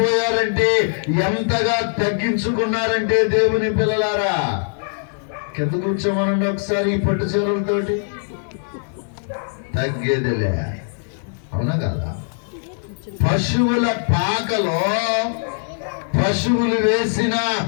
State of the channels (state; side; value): silent; right; digital silence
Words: ఎంతగా తగ్గించుకున్నారంటే దేవుని పిల్లలారా, కింద కూర్చోమనండి ఒకసారి. ఈ పట్టు చీరలతోటి తగ్గేదిలే, అవునా కదా? పశువుల పాకలో పశువులు వేసిన